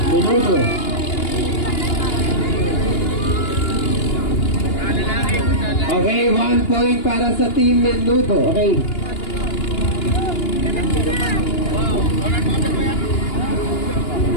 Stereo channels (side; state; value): right; late; 2.9 ms